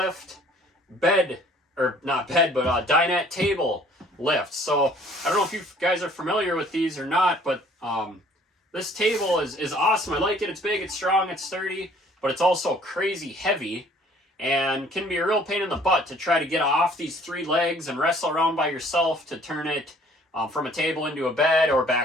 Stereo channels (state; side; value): normal; both; correlation 0.56